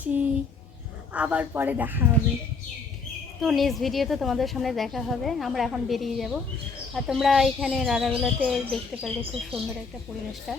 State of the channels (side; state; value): right; quieter; 4.4 dB